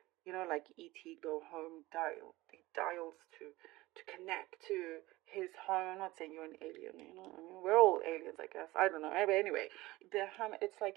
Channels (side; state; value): left; quieter; 19.4 dB